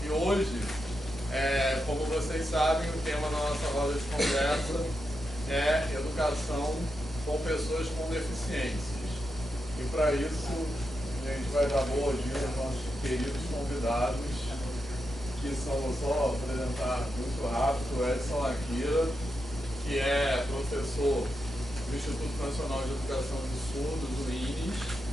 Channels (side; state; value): both; normal; correlation 0.86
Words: E hoje, como vocês sabem, o tema da nossa roda de conversa é educação com pessoas com deficiências. E para isso, a gente vai dar boa-vinda aos nossos queridos convidados, que são, vou só apresentar muito rápido, o Edson Akira, que é professor do Instituto Nacional de Educação de Surdos, o INES,